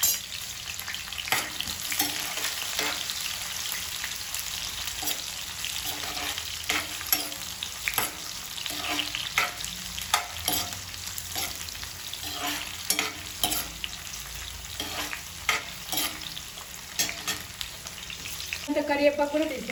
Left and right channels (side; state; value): both; identical; correlation 1.00